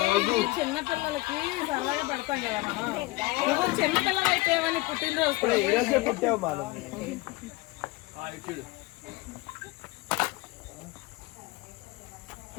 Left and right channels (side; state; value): right; quieter; 21.5 dB